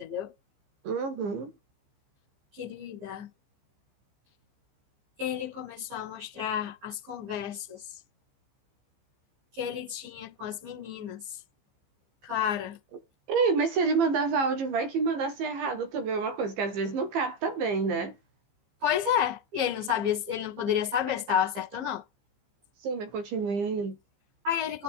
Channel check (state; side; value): late; left; 15 ms